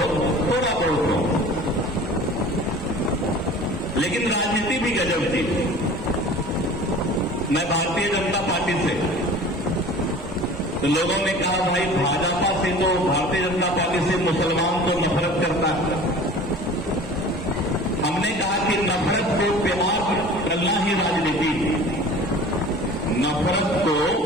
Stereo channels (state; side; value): normal; both; correlation 0.42